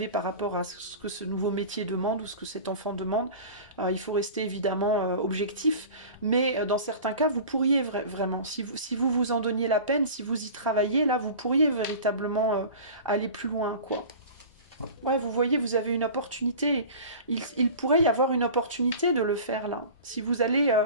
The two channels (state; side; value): inverted; both; correlation -0.37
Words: par rapport à ce que ce nouveau métier demande ou ce que cet enfant demande. Il faut rester évidemment objectif, mais dans certains cas, vous pourriez vraiment, si vous vous en donniez la peine, si vous y travaillez, là, vous pourriez véritablement aller plus loin, quoi. Ouais, vous voyez, vous avez une opportunité. Il pourrait y avoir une opportunité de le faire, là. Si vous allez...